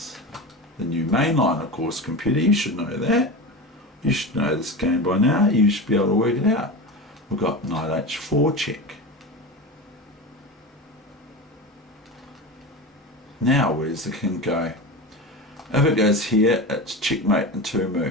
the new mainline, of course, computer, you should know that. You should know this game by now. You should be able to work it out. We've got knight h4 check. Now where's the king go? If it goes here, it's checkmate in 2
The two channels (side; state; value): both; normal; correlation 0.26